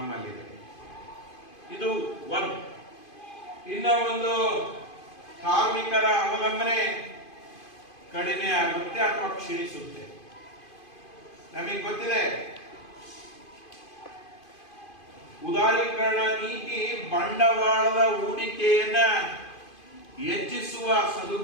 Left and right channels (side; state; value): right; late; 2.5 ms